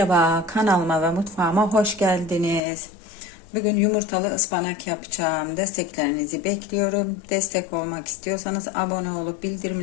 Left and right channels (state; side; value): drops out; right; at 2.6 s